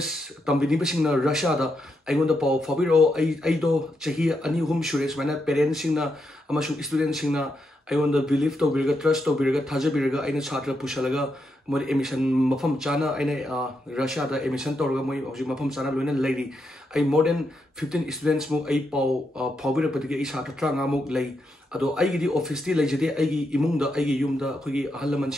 तंबिनी बसिंगना Russia दा आइगोंदा पाव फाबिरो आई दो चही अनि हुम सुरेश माने पेरेंट्स सिंगना अमसु स्टूडेंट सिंगना आइगोंदा बिलीव तो बिरगा ट्रस्ट तो बिरगा थाजे बिरगा आइना छात्र पुशलगा मोर एमिशन मफम चाना आइने रशिया दा एमिशन तोरगा मोय हौजि मफम चाना लोइना लेरी आई मोर देन 15 स्टूडेंट्स मु आई पाव फाबिरो पदिगे आई छात्र ट्रांगा मु लै अदो आइगिदी ऑफिस ती लेजदे आइगी इमुंगदा आइगी युमदा अखोगी अहलमन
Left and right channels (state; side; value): normal; both; correlation 0.83